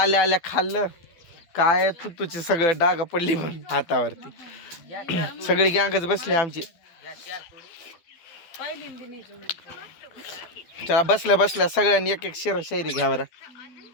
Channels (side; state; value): right; late; 12 ms